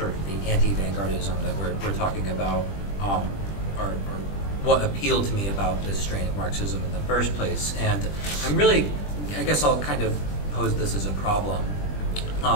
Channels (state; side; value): late; right; 20 ms